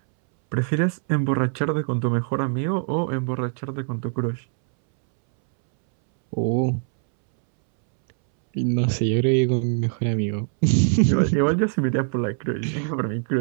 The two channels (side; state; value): left; silent; 64 dB below the other